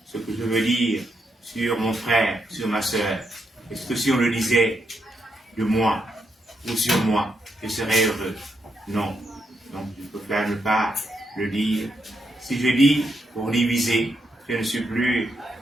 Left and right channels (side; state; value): both; normal; correlation 0.81